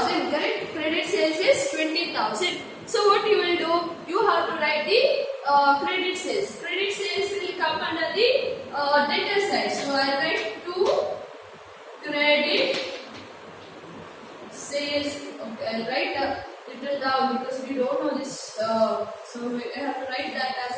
Correct? Credit sales is 20,000. So what you will do? You have to write the credit sales. Credit sales will come under the debtor side. So I write to credit without, because we don't know this, so we have to write that as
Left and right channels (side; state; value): both; identical; correlation 1.00